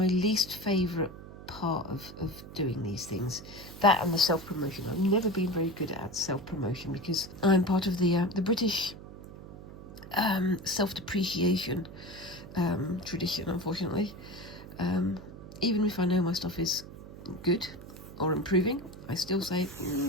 least favourite part of doing these things. That and the self-promotion. I've never been very good at self-promotion because I'm part of the British self-depreciation tradition, unfortunately. Even if I know my stuff is good or improving, I still say,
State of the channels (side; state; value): right; noise; hum, 15 dB below the sound